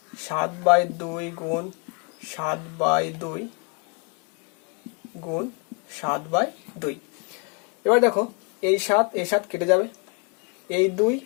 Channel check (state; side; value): quieter; right; 34.7 dB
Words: 7/2 গুণ 7/2 গুণ 7/2। এবার দেখো এই 7 কেটে যাবে, এই 2